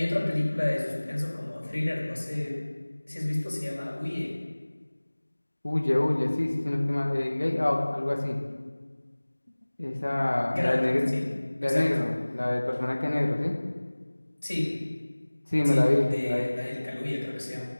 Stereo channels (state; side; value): inverted; both; correlation -1.00